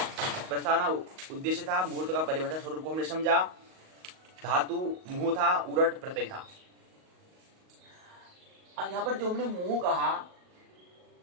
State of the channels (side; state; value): left; late; 38 ms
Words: प्रस्तावना, उद्देश्य था, मुहूर्त का परिभाषा स्वरूप को हमने समझा, धातु मुंह था, उरट प्रत्यय था। अब यहाँ पर जो हमने मुंह कहा,